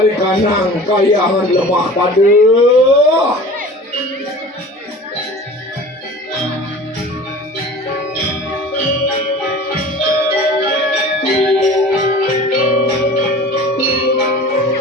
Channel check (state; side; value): normal; both; correlation 0.41